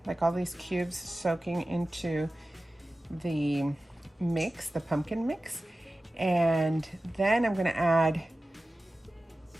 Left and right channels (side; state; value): both; normal; correlation 0.95